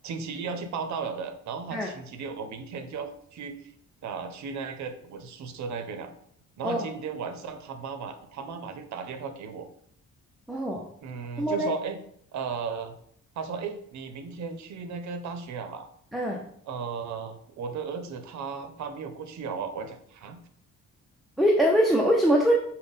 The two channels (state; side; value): normal; both; correlation 0.51